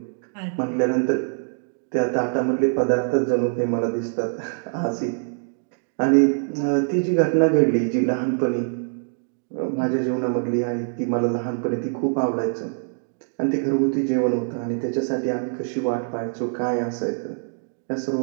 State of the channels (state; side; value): silent; left; digital silence